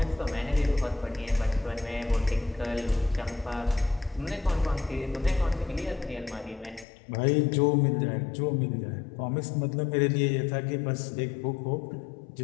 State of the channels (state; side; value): drops out; right; at 6.9 s